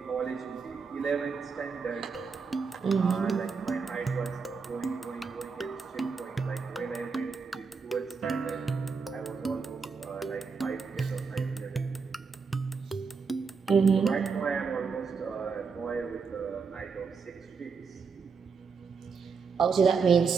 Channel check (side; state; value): left; quieter; 5.3 dB